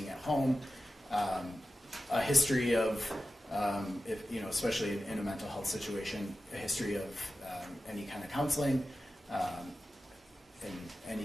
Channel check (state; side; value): normal; both; correlation 0.94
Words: at home, a history of, especially in a mental health situation, a history of any kind of counseling, and